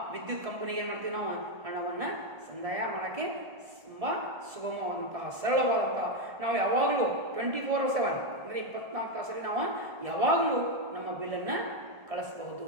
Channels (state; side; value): late; left; 1.7 ms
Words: ವಿದ್ಯುತ್ ಕಂಪನಿಗೆ ಏನು ಮಾಡ್ತೀವಿ, ನಾವು ಹಣವನ್ನು ಸಂದಾಯ ಮಾಡೋಕ್ಕೆ ತುಂಬ ಸುಗಮವಾದಂತಹ ಸರಳವಾದಂತಹ, ನಾವು ಯಾವಾಗಲೂ 24/7 ಅಂದರೆ 24 ತಾಸಲ್ಲಿ ನಾವು ಯಾವಾಗಲೂ ನಮ್ಮ ಬಿಲ್ಲನ್ನು ಕಳಿಸ್ಬಹುದು,